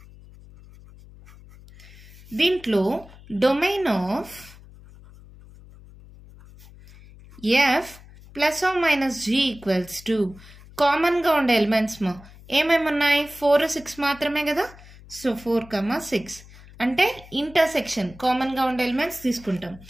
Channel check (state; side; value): noise; left; hum, 21 dB below the sound